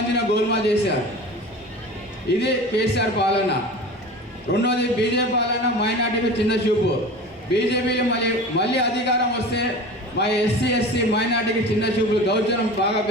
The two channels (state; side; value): normal; both; correlation 0.35